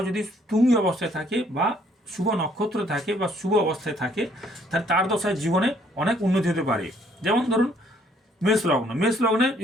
যদি তুঙ্গি অবস্থায় থাকে বা শুভ নক্ষত্র থাকে বা শুভ অবস্থায় থাকে, তাহলে তার দশায় জীবনে অনেক উন্নতি হতে পারে। যেমন ধরুন মেষ লগ্ন, মেষ লগ্নে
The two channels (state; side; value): normal; both; correlation 0.64